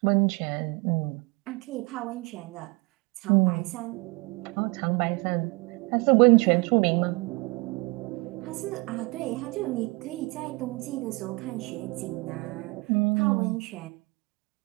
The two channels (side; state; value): left; quieter; 26.8 dB